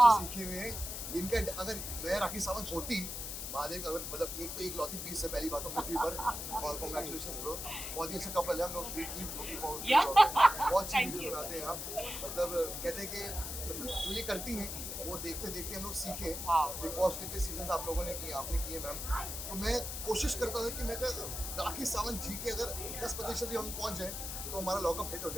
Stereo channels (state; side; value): noise; left; hiss, 6 dB below the sound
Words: सीखे हुए। इनका अगर मैं राखी सावंत होती, महादेव अगर मतलब एक तो एक लौती पीस है पहली बात तो पृथ्वी पर, और कांग्रेचुलेशंस ब्रो, बहुत ही अच्छा कपल है हम लोग। बहुत अच्छी वीडियो बनाते हैं आप, मतलब कहते हैं कि मतलब जो ये करती हैं वो देखते देखते हम लोग सीखे। बिग बॉस के सीजन आप लोगों ने किए, आपने किए मैम, तो मैं कोशिश करता था कि मैं राखी सावंत जी के अगर 10% भी हम पहुंच जाए तो हमारा लॉकअप हिट हो